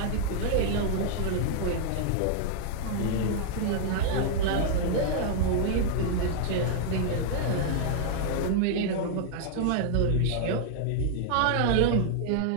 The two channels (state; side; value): different; both; correlation -0.01